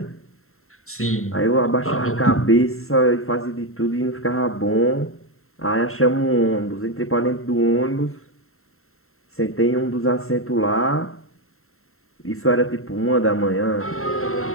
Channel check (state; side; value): late; right; 0.62 ms